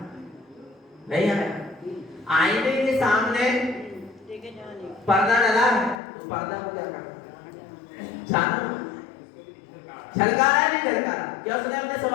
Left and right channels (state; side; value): drops out; right; at 6.0 s